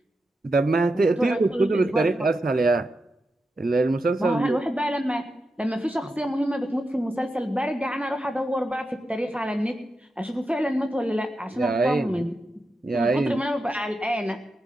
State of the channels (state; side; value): normal; both; correlation 0.88